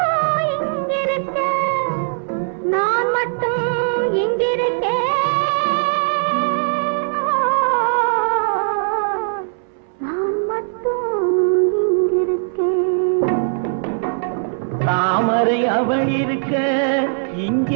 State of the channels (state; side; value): silent; left; 66 dB below the other